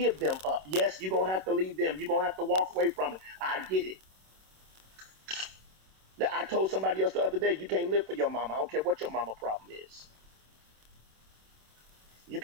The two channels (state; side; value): late; left; 26 ms